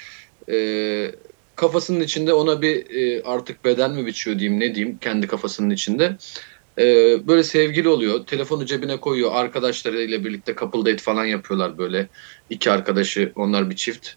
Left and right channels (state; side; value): silent; left; 65 dB below the other